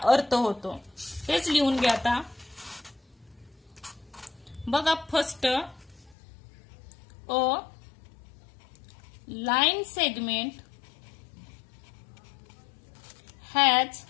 अर्थ होतो. तेच लिहून घ्या आता. बघा, first a line segment has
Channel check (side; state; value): right; drops out; at 6.2 s